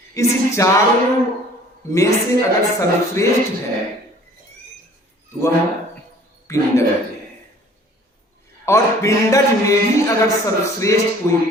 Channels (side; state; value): both; normal; correlation 0.52